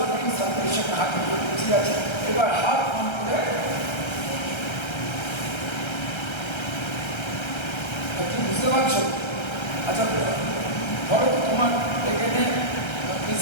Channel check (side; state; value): right; late; 1.3 ms